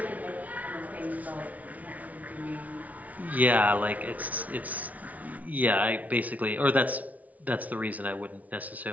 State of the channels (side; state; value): left; late; 0.072 ms